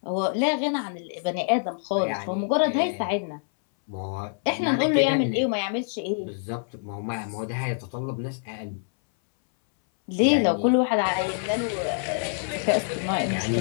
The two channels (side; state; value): right; silent; 61 dB below the other